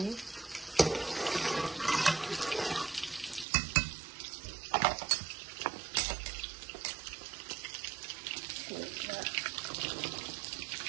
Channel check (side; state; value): left; drops out; at 3.5 s